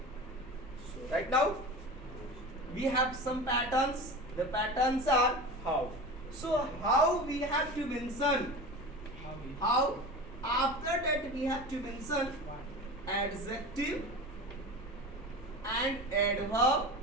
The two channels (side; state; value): left; noise; rumble, 18 dB below the sound